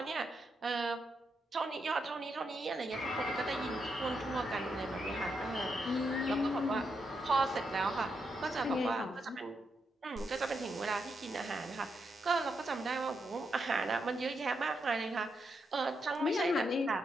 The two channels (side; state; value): both; normal; correlation 0.82